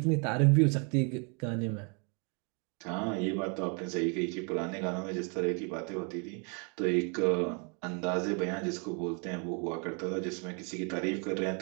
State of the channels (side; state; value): left; quieter; 36.2 dB